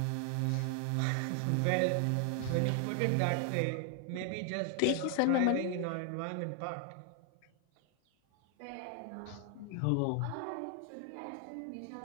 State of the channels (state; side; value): different; both; correlation 0.00